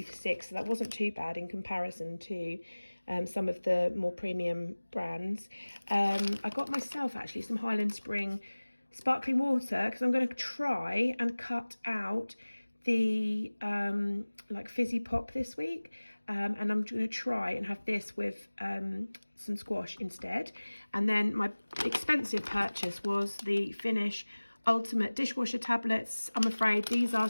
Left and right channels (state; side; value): inverted; both; correlation -1.00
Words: for 6, so that wasn't too bad in comparison to some of the more premium brands. I got myself actually some Highland Spring sparkling water because I'm going to try and cut out the like fizzy pop this week, and I'm going to try and have this with some squash instead. And then my expensive purchase was the Finish Ultimate Dishwasher tablets. I'm afraid these are